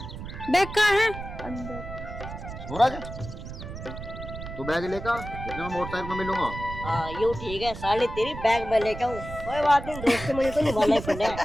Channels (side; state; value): right; noise; rumble, 10 dB below the sound